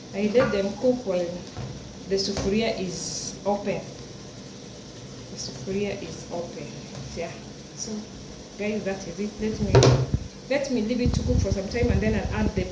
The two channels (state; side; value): identical; both; correlation 1.00